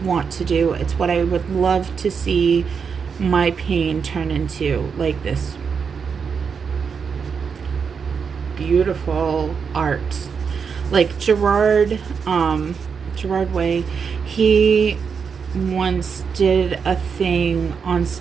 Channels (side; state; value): left; quieter; 6.1 dB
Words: want to do. It's what I would love to see my pain turn into, like this beautiful art. Like Gerard Way, he once did a thing on